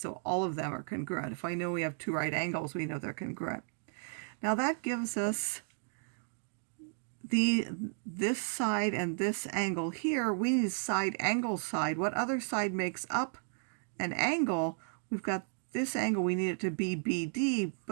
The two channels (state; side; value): silent; left; 55 dB below the other